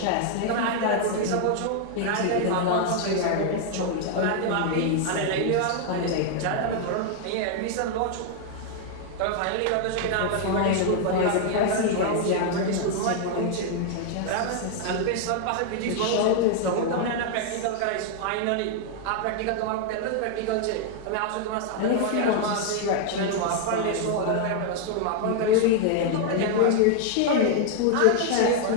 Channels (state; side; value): different; both; correlation 0.00